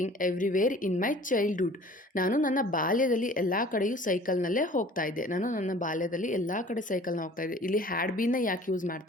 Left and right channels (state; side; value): normal; both; correlation 0.48